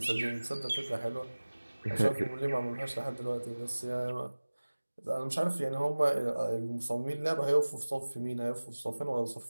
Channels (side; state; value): both; inverted; correlation -1.00